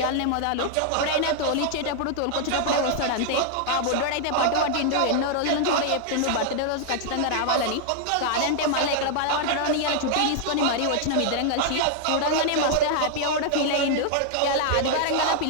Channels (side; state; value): both; different; correlation 0.00